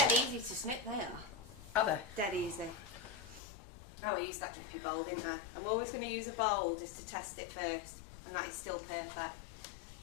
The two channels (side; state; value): right; drops out; at 3.4 s